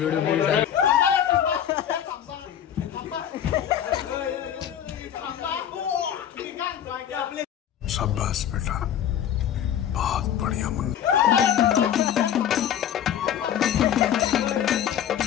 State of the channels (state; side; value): quieter; right; 9.8 dB